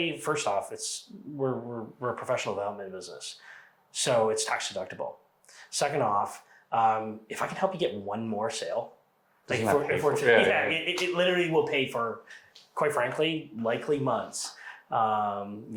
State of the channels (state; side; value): identical; both; correlation 1.00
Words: first off, we're a professional development business, so it's tax deductible. Second off, if I can help you get one more sale, like it literally will pay for, quite frankly, likely months.